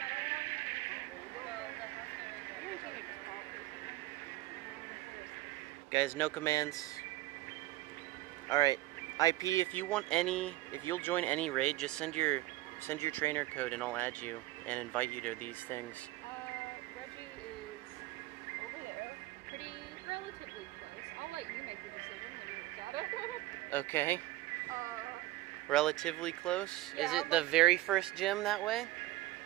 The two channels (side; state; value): left; quieter; 17.6 dB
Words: Giratina just popped. Guys, no commands. Alright. IP, if you'll join any raid, just send your trainer code and I'll add you and invite you to these things. Reggie is over there, pretty relatively close. I'll let you make the decision when you look at it. Okay. uh, Relatively close? Yeah, Is it I'm the like- very first gym that way?